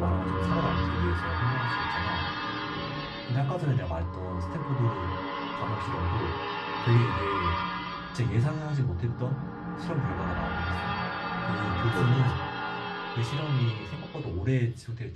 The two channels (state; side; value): identical; both; correlation 1.00